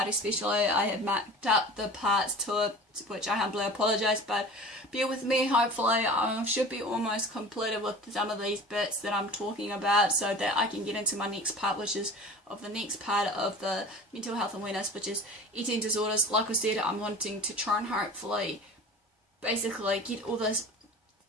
especially, I have marked up the parts to it, which I humbly apologise, but bear with me, hopefully I should be almost completed with some of these bits that I'm talking about so that I can get into my next part, which is of the next part of the mental health awareness, which is eating disorders. Like I said, I'm wanting to try and hopefully basically get all this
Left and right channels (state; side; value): normal; both; correlation 0.38